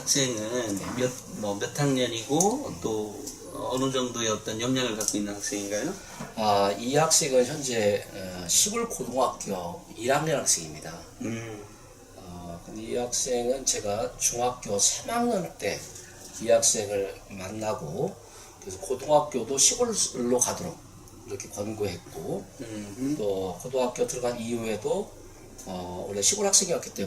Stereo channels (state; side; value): identical; both; correlation 1.00